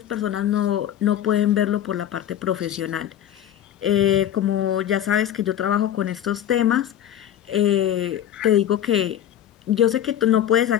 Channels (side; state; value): right; quieter; 10.8 dB